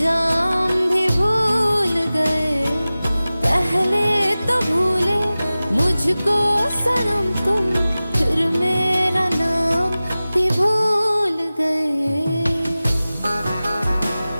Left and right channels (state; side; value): inverted; both; correlation -0.97